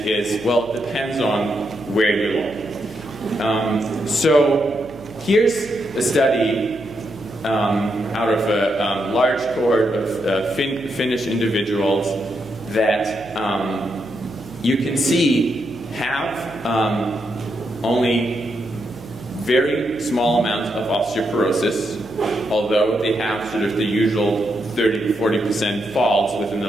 is, well, it depends on where you look. So here's a study out of a large cohort of Finnish individuals that you can see have only very small amounts of osteoporosis, although they have sort of the usual 30 to 40% falls within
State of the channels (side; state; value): right; noise; hum, 20 dB below the sound